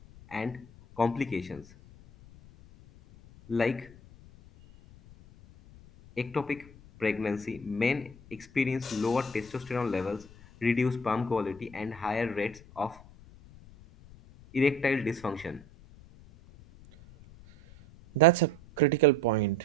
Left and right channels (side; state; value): left; noise; rumble, 21 dB below the sound